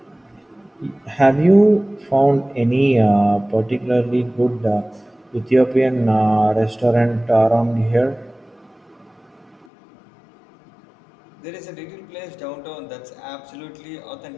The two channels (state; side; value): drops out; right; at 9.7 s